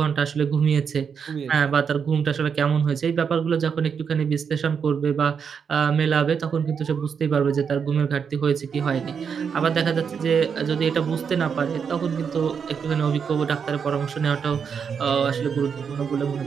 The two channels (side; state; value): left; quieter; 6.7 dB